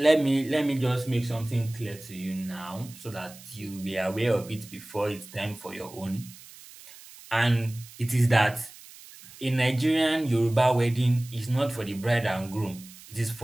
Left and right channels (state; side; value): noise; right; hiss, 19 dB below the sound